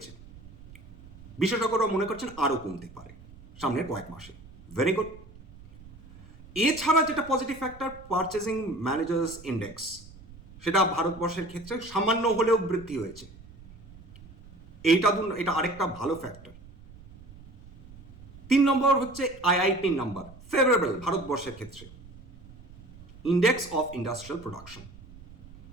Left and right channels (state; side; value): noise; right; rumble, 20 dB below the sound